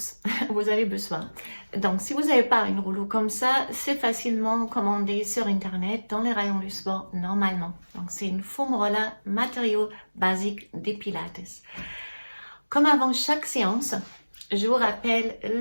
vous avez besoin. Donc, si vous n'avez pas un rouleau comme ça, c'est facilement commandé sur Internet dans les rayons du sport normalement. Donc, c'est une foam roller matériau basique des Pilates. Comme avant chaque séance, je vous rappelle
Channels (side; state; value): both; inverted; correlation -1.00